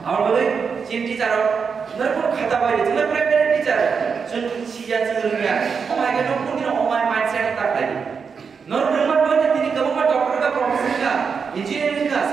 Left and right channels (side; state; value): left; quieter; 5.9 dB